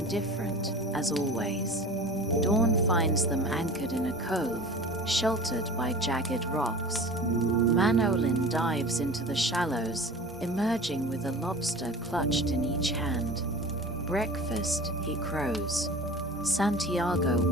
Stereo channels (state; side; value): normal; both; correlation 0.39